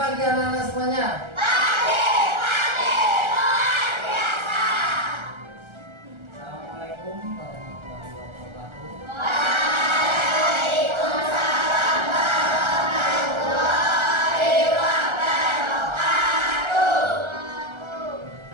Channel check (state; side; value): late; left; 1.3 ms